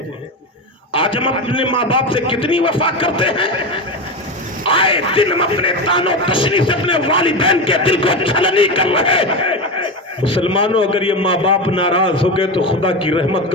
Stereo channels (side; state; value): both; normal; correlation 0.19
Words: آج ہم اپنے ماں باپ سے کتنی وفا کرتے ہیں. آئے دن ہم اپنے تانو تشنی سے اپنے والدین کے دل کو چھلنی کر رہے. مسلمانوں, اگر یہ ماں باپ ناراض ہو گئے تو خدا کی رحمت